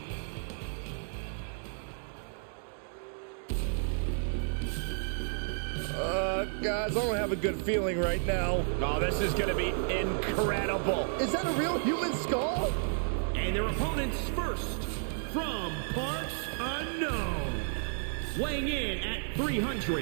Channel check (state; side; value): silent; left; digital silence